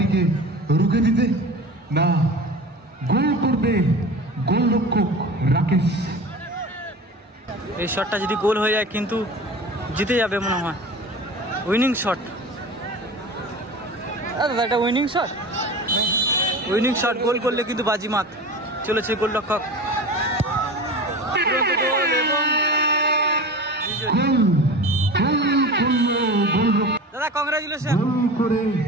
রুখে দিতে? না, গোল করবে গোলরক্ষক রাকেশ। এই শটটা যদি গোল হয়ে যায় কিন্তু জিতে যাবে মনে হয়, উইনিং শট। দাদা এটা উইনিং শট, উইনিং শট, গোল করলে কিন্তু বাজিমাত। চলেছে গোলরক্ষক, দাদা কংগ্রাচুলেশন। গোল করে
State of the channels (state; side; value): normal; both; correlation 0.34